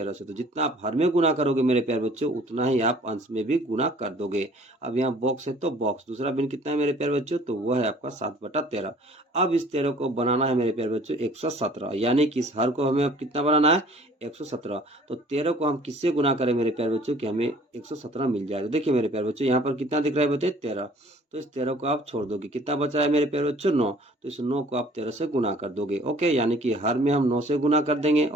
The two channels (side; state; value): both; normal; correlation 0.53